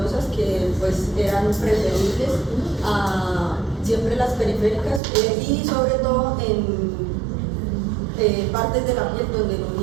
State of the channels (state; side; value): drops out; left; at 5.0 s